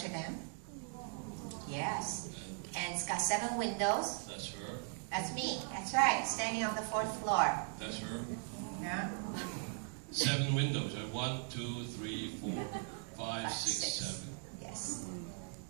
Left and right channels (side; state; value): left; silent; 52 dB below the other